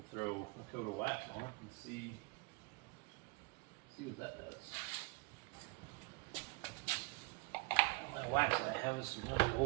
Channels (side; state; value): left; quieter; 27.7 dB